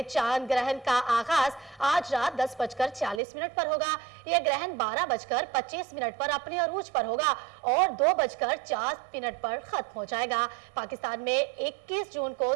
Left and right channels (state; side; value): drops out; left; at 3.2 s